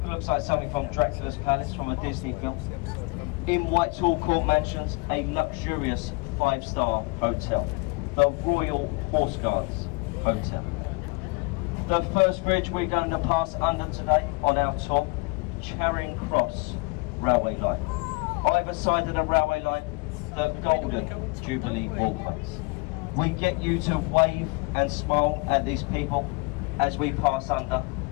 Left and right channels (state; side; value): quieter; right; 28.1 dB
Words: looks like something from Dracula's Palace from a Disney film. In Whitehall Court Mansions, a luxurious 5-star hotel, the Royal Horse Guards Hotel. The first bridge we're going to pass under today on our tour, Charing Cross Railway Line. Either side of the railway line, the Golden Jubilee Walkways. We get you to wave and smile at these people as we pass under.